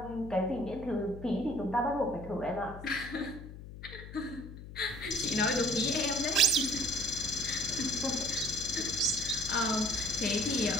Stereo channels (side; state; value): left; noise; hum, 13 dB below the sound